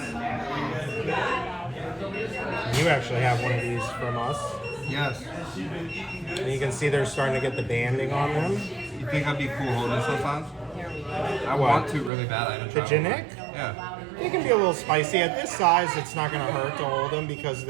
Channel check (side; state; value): left; drops out; at 12.1 s